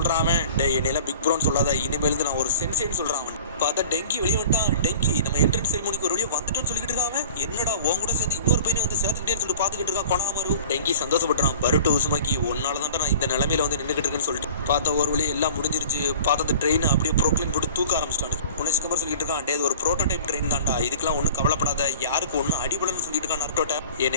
அவன். டே என்னையில பிக் ப்ரோன்னு சொல்லாத, இனிமேல் நான் ஒரு சென்சேன்னு சொல்றான் அவன். பார்த்தா டெங்கி வெளியே வந்துட்டான். டெங்கி நம்ம என்ட்ரன்ஸ் செரிமோனிக்கு ஒரு வழியா வந்துட்டோன்னு சொல்லிட்டு இருக்கான். என்னடா உன் கூட சேர்ந்து இன்னொரு பையனை வந்து சேர்த்துக்கிட்டேன்னு சொல்லிட்டு பார்த்துக்கிட்டு இருக்கான் கொணங்குமரு. டெங்கி சந்தோஷப்படுறான். பருட்டோ உசுமாக்கி ஒன்னாலதான் நான் இந்த நிலைமையில வந்து நின்றுகிட்டு இருக்குன்னு சொல்லிட்டு பார்த்தா ஒரு வழி எல்லாம் முடிஞ்சிருச்சு. பார்த்தா அந்த ட்ரெயின் அப்படியே ப்ரோக்ளைன் போட்டு தூக்க ஆரம்பிச்சிட்டாங்க. உன்னை சிக்கமர் சொல்லிட்டு இருக்கான். டே ஒரு ப்ரோட்டோடைப் ட்ரெயின் தான்டா, இதுக்கெல்லாம் ஒன்றும் கவலைப்படாத, யாருக்கு ஒன்றும் அடிபடன்னு சொல்லிட்டு இருக்கான் நருட்டோட்ட.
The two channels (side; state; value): both; inverted; correlation -0.43